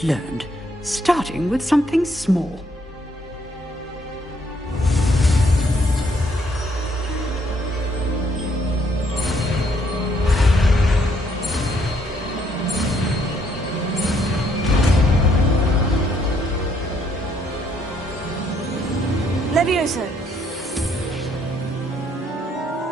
learned, starting with something small. Levioso.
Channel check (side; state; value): both; normal; correlation 0.69